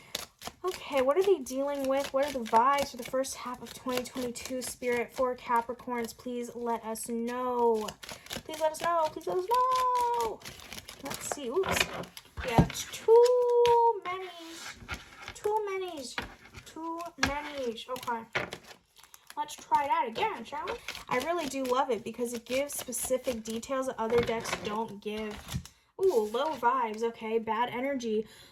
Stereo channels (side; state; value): both; identical; correlation 1.00